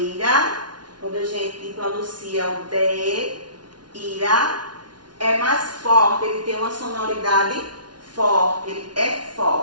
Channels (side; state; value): left; late; 0.70 ms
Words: quando a gente pronuncia o D, ira, é mais forte, ele tem uma sonoridade forte, ele é